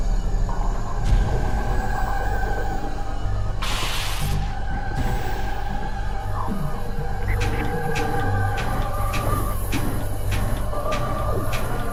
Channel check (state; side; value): identical; both; correlation 1.00